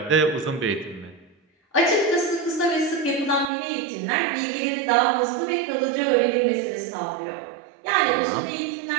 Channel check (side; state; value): left; drops out; at 3.5 s